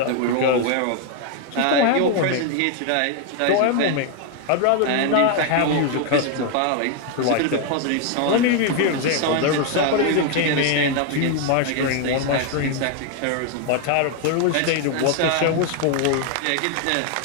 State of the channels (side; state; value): both; different; correlation 0.01